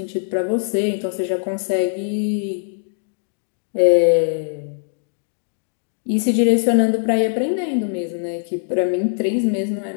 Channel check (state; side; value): silent; right; digital silence